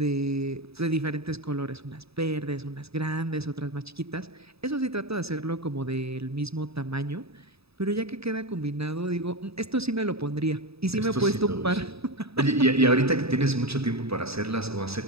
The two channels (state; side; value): late; left; 0.78 ms